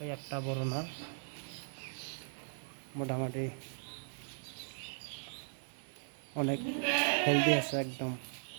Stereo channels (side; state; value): left; silent; digital silence